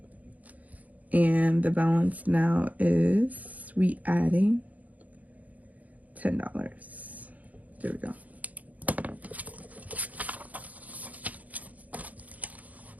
And the balance now is we adding $10. There we go.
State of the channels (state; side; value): late; left; 0.075 ms